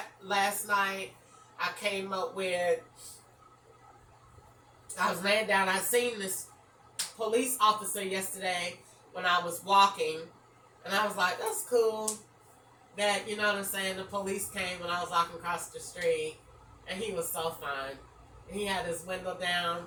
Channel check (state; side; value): identical; both; correlation 1.00